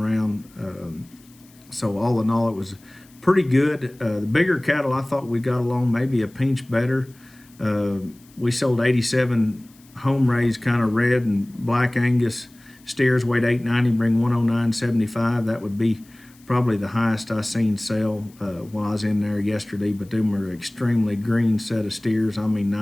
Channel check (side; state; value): left; noise; hiss, 28 dB below the sound